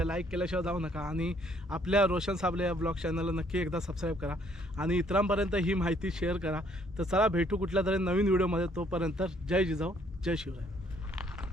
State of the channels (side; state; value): both; normal; correlation 0.65